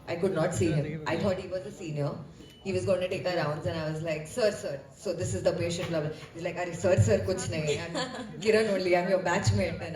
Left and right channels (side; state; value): both; identical; correlation 1.00